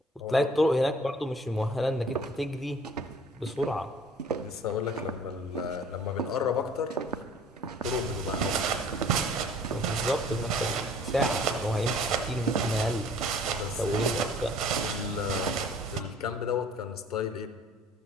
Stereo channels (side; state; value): both; normal; correlation 0.52